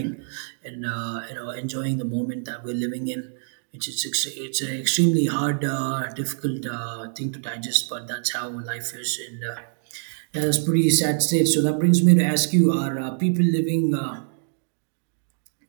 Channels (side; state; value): left; silent; digital silence